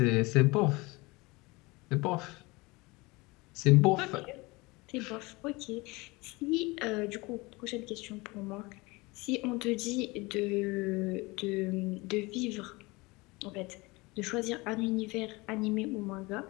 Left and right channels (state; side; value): quieter; right; 23.9 dB